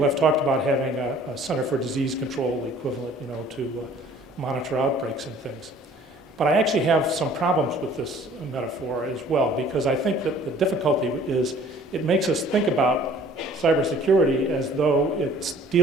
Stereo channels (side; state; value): both; normal; correlation 0.53